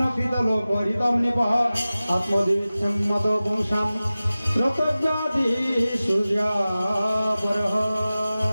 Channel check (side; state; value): both; inverted; correlation -0.96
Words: লোক হরিতম নিপহ আত্মদিচ্ছম্মত পুংসাম শ্রোতব্যাধি সূর্যাপরহ।